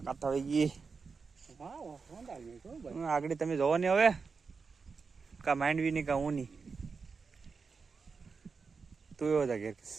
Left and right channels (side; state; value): left; quieter; 5.0 dB